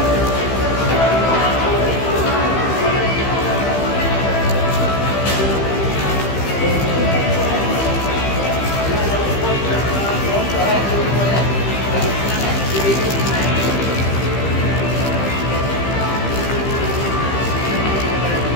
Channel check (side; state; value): right; late; 15 ms